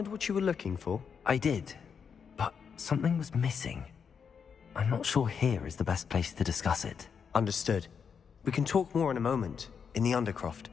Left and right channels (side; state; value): right; quieter; 6.6 dB